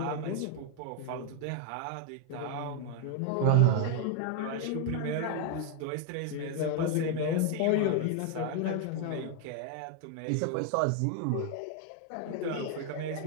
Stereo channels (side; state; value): both; different; correlation 0.00